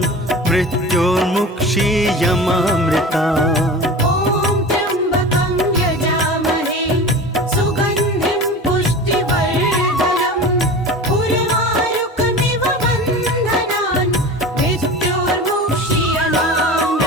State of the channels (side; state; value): both; normal; correlation 0.34